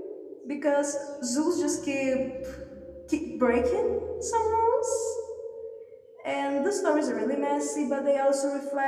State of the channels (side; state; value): both; identical; correlation 1.00